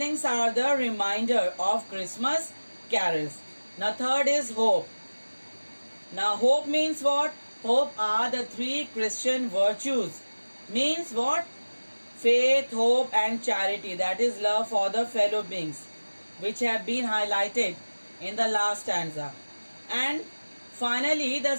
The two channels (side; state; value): both; inverted; correlation -1.00